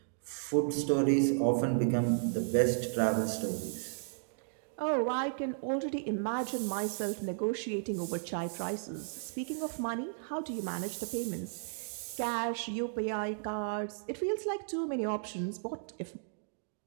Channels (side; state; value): left; silent; digital silence